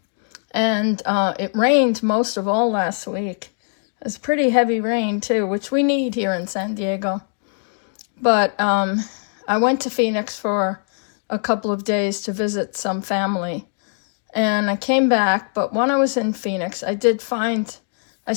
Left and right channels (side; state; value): right; silent; 65 dB below the other